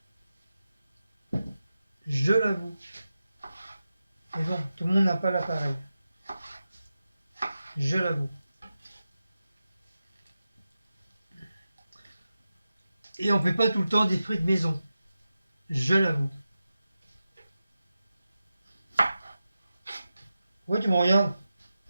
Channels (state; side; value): inverted; both; correlation -0.92